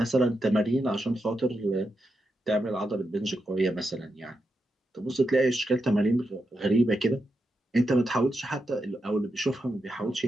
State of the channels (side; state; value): both; normal; correlation 0.86